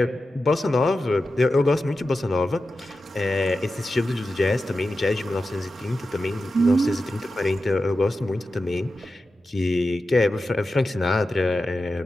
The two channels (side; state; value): both; normal; correlation 0.92